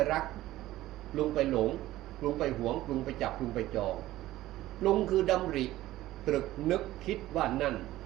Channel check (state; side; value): quieter; left; 15.6 dB